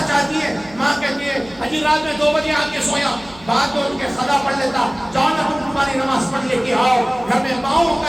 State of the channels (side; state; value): right; noise; hum, 23 dB below the sound